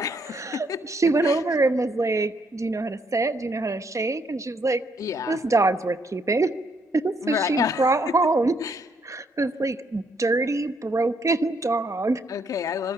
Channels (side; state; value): both; normal; correlation 0.71